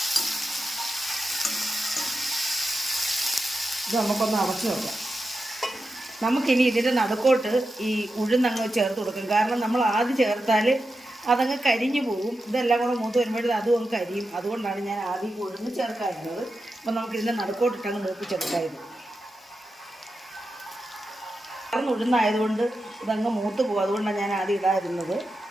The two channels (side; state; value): both; normal; correlation 0.90